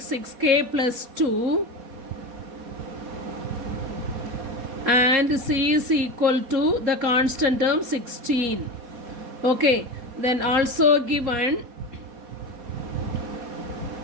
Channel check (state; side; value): late; left; 4.2 ms